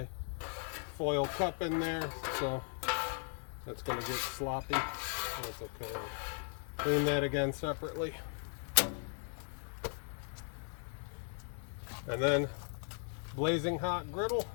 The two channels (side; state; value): right; silent; 53 dB below the other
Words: foil cup in there, so that's going to get sloppy. That's okay. I'll clean that again separately. And then blazing hot griddle